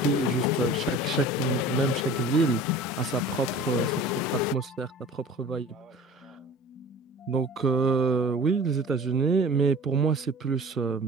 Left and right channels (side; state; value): both; normal; correlation 0.43